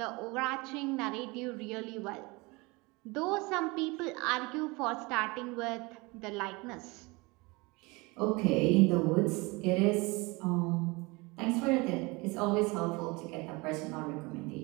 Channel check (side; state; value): left; quieter; 25.3 dB